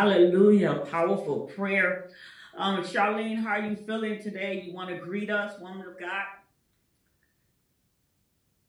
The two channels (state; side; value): identical; both; correlation 1.00